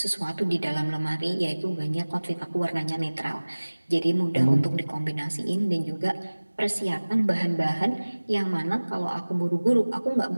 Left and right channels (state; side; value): inverted; both; correlation -1.00